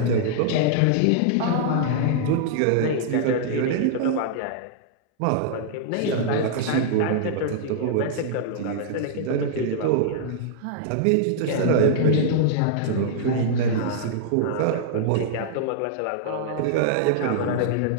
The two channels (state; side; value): different; both; correlation -0.01